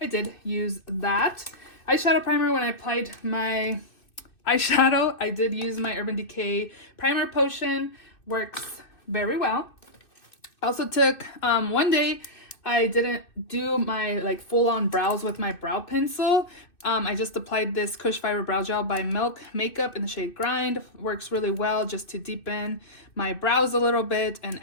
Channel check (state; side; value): late; right; 2.6 ms